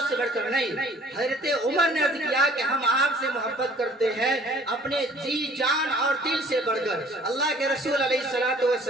سے بڑھ کر نہیں. حضرت عمر نے عرض کیا کہ ہم آپ سے محبت کرتے ہیں اپنے جی جان اور دل سے بڑھ کر. اللہ کے رسول علیہ الصلوۃ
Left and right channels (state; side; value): normal; both; correlation 0.54